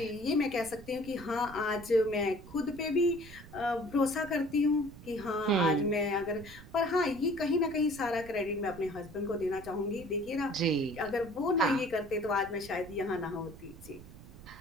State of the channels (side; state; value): right; noise; rumble, 17 dB below the sound